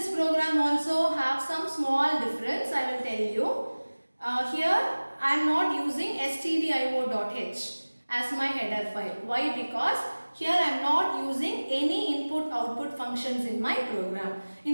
program also have some small difference, I will tell you. Here I am not using stdio.h as my header file. Why? Because here I am not using any input output functions in my program.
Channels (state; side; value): inverted; both; correlation -1.00